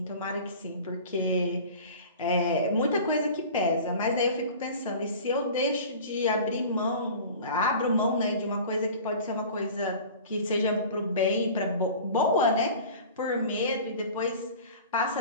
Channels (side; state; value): both; inverted; correlation -0.40